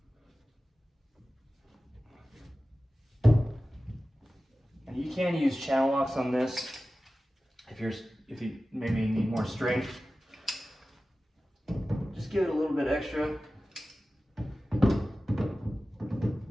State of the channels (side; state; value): both; normal; correlation 0.95